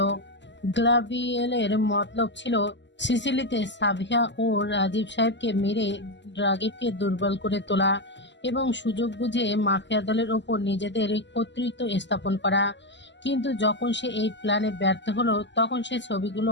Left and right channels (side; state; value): right; late; 0.53 ms